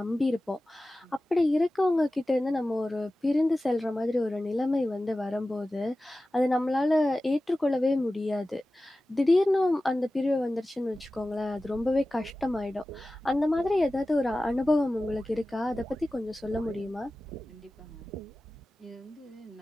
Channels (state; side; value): normal; both; correlation 0.96